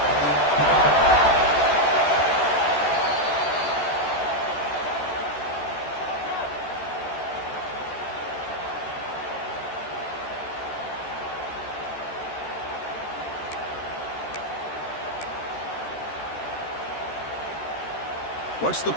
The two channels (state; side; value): late; right; 13 ms